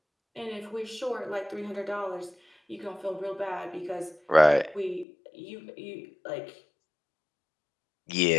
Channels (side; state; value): right; drops out; at 5.1 s